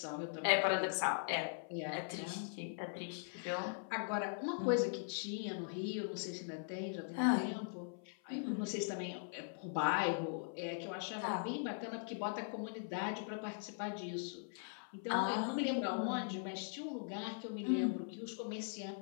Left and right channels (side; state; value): right; silent; 51 dB below the other